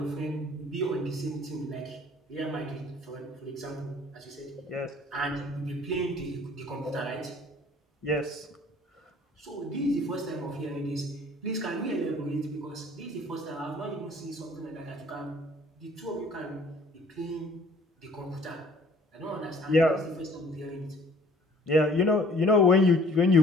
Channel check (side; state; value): both; normal; correlation 0.54